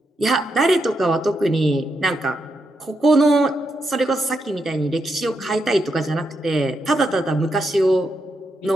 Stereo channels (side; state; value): both; normal; correlation 0.83